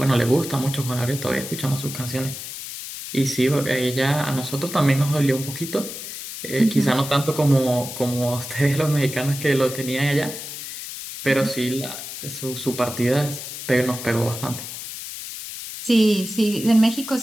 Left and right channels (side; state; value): left; noise; hiss, 9 dB below the sound